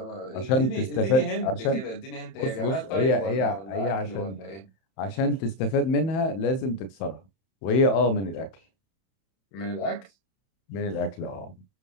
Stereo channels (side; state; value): right; late; 31 ms